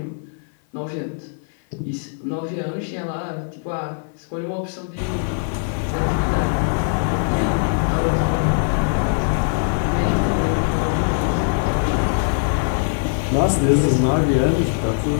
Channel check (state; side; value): silent; right; 56 dB below the other